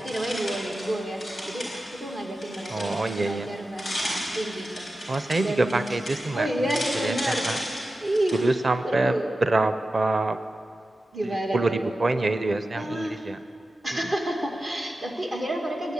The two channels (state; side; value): normal; both; correlation 0.93